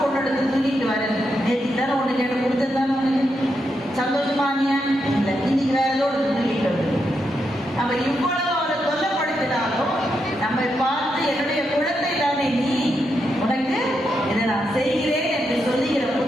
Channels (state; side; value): normal; both; correlation 0.83